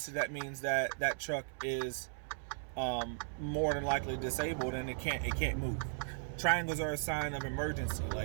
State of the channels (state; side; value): silent; left; 53 dB below the other